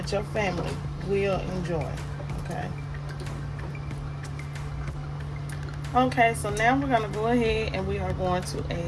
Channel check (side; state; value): both; identical; correlation 1.00